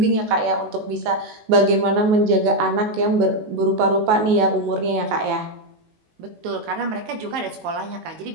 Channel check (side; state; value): left; late; 19 ms